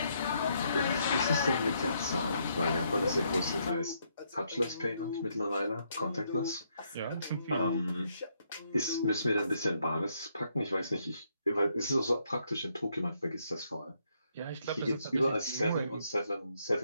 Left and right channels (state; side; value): inverted; both; correlation -0.74